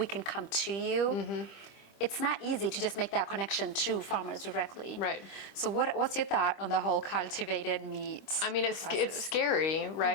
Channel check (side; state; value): right; late; 25 ms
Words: can come to you. It's not easy to just make that connection to farmers directly. Right. So what's your thought on the whole cultivated meat? I mean, it's scary,